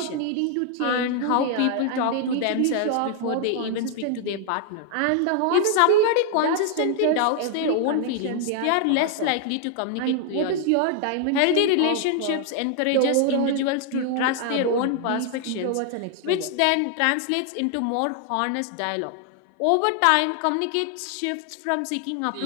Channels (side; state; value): both; different; correlation 0.00